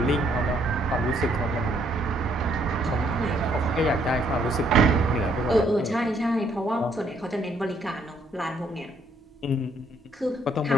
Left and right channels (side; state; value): both; normal; correlation 0.68